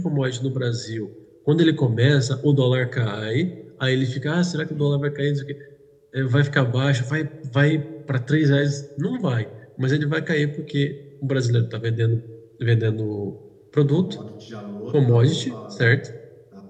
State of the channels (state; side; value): identical; both; correlation 1.00